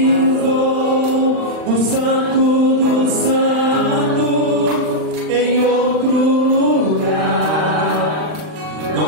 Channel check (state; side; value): late; left; 39 ms